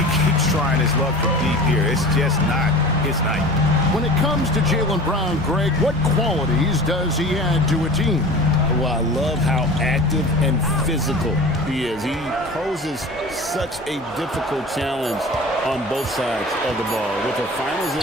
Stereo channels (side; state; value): both; normal; correlation 0.38